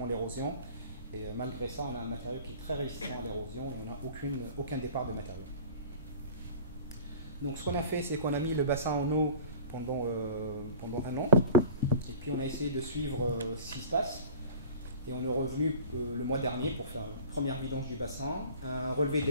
l'érosion. Et malgré ça, on a un matériau qui est très résistant à l'érosion et on n'a aucun départ de matériau. Donc ce qu'on a fait, c'est qu'on a mis le bassin en eau pendant un an. Et puis on a essayé de suivre ce qui se passe. Et on est revenu le mois dernier pour faire une première vidange du bassin, un relevé de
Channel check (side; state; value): both; inverted; correlation -0.42